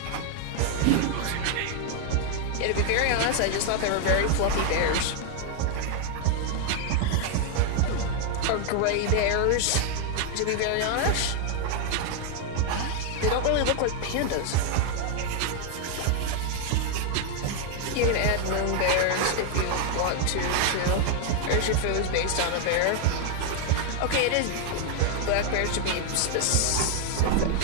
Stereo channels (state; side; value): different; both; correlation 0.00